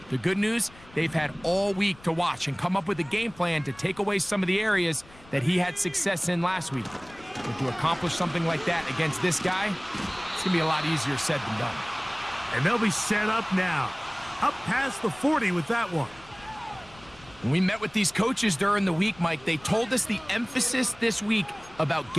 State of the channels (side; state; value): left; noise; rumble, 24 dB below the sound